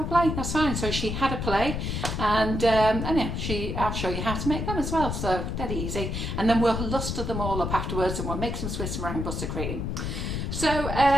play, that's fine. So she had a play, and anyhow, I'll show you how to make them as well. So dead easy. And then we'll luster them all up afterwards, and we'll make some Swiss meringue buttercream. So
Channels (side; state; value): left; noise; rumble, 3 dB below the sound